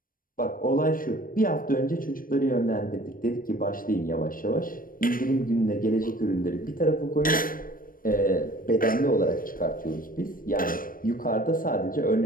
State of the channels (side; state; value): right; late; 0.41 ms